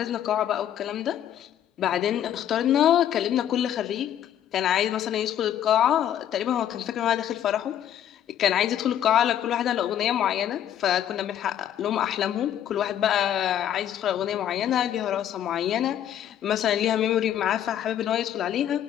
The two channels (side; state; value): right; quieter; 10.6 dB